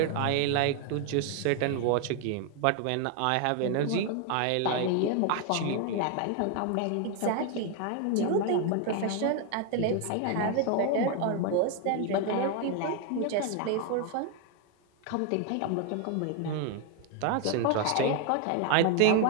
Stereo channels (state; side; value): different; both; correlation 0.01